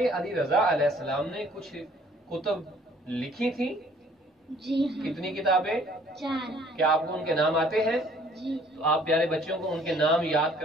علی رضا علیہ السلام نے کچھ کتب لکھی تھی؟ جی ہاں۔ کتنی کتابیں؟ 4۔ کیا آپ کو ان کے نام آتے ہیں؟ جی۔ تو آپ پیارے بچوں کو ان کے نام یاد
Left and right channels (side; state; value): both; normal; correlation 0.58